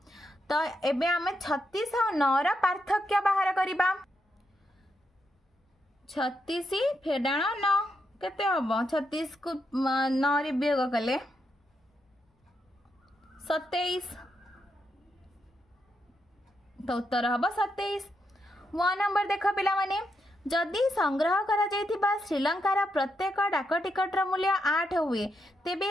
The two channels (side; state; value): both; normal; correlation 0.82